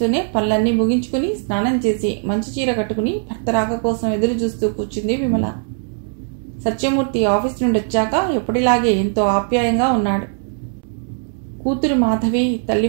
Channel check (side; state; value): left; silent; digital silence